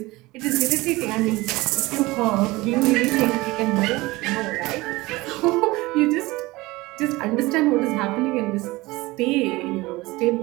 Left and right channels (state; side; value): quieter; left; 20.9 dB